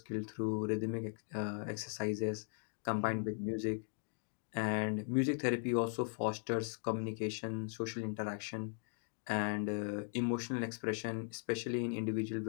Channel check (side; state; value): right; silent; 52 dB below the other